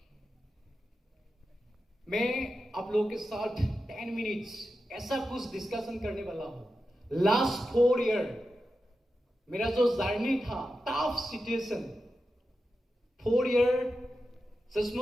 मैं आप लोगों के साथ 10 मिनट्स ऐसा कुछ डिस्कशन करने वाला हूँ लास्ट 4 ईयर मेरा जो जर्नी था टफ सिचुएशन 4 ईयर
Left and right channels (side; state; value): both; normal; correlation 0.90